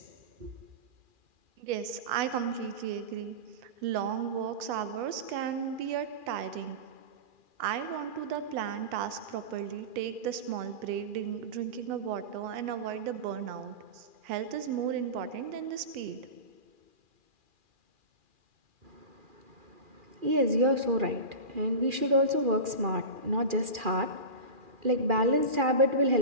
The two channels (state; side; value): late; left; 2.4 ms